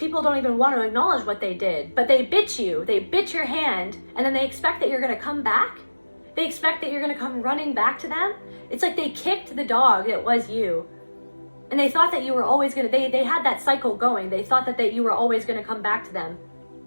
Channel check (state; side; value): inverted; both; correlation -1.00